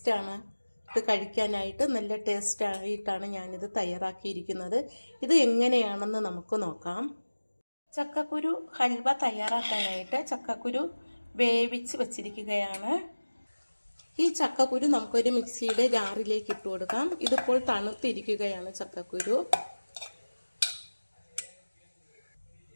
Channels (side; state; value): both; inverted; correlation -1.00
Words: ഇത് കഴിക്കാനായിട്ട് നല്ല ടേസ്റ്റ് ആയിട്ടാണ് ഞാനിത് തയ്യാറാക്കിയിരിക്കുന്നത്. ഇത് എങ്ങനെയാണെന്ന് നമുക്ക് നോക്കാം. ചക്കക്കുരു ഹൽവ തയ്യാറാക്കാനായിട്ട് ചക്കക്കുരു വേവിച്ച് വച്ചിരിക്കുകയാണ്. ഈ ചക്കക്കുരു നമുക്കൊരു മിക്സിയുടെ ജാറിലേക്ക് ഇട്ട് കൊടുക്കാം. ഇതിപ്പോൾ തണുത്തിരിക്കുകയാണ് ചക്കക്കുരു.